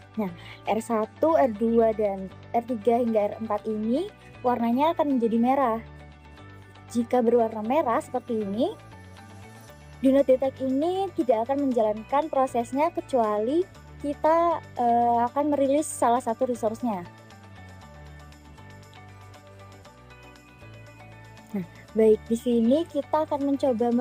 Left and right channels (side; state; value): both; identical; correlation 1.00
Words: Nah, R1, R2, dan R3 hingga R4 ini warnanya akan menjadi merah. Jika berwarna merah seperti ini, do not detect ini tidak akan menjalankan prosesnya kecuali kita akan merilis salah satu resource-nya. Nah, baik, di sini kita akan mencoba